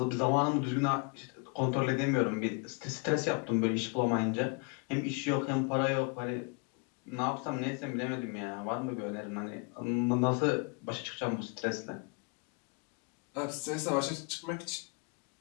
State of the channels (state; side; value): quieter; right; 32.6 dB